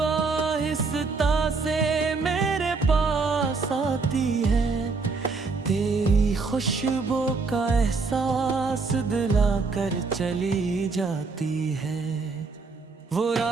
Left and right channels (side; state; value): left; quieter; 4.3 dB